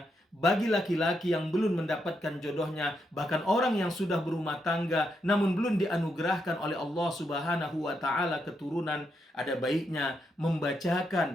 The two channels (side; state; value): both; normal; correlation 0.81